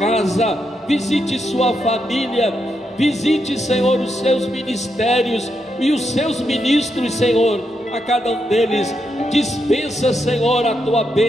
visite sua família, visite, Senhor, os seus ministérios e os seus ministros, Senhor, a cada um deles. Dispensa, Senhor, a tua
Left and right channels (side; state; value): both; normal; correlation 0.82